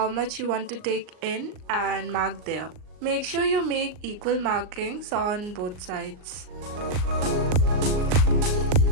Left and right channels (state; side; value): late; left; 39 ms